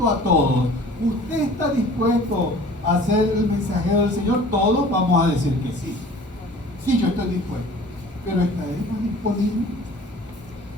a todos, ¿usted está dispuesto a ser el mensajero del Señor? Todos vamos a decir que sí. Sí, yo estoy dispuesto. Pero ¿estaremos disponibles?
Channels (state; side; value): normal; both; correlation 0.47